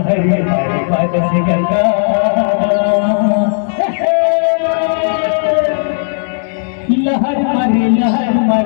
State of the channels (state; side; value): silent; right; digital silence